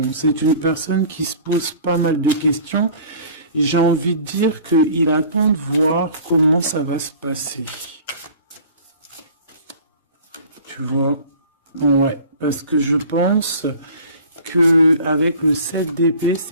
C'est une personne qui se pose pas mal de questions. J'ai envie de dire qu'il attend de voir comment ça va se passer. Tu vois? Ouais, parce que je pense que avec le 7 d'épée,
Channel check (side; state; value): both; inverted; correlation -0.45